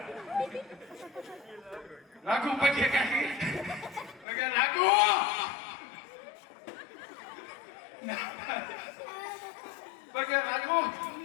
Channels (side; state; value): right; drops out; at 4.2 s